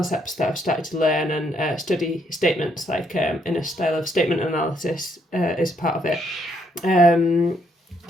that I've started to learn and study statements, like in a style of statement analysis is part of it.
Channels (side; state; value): both; normal; correlation 0.72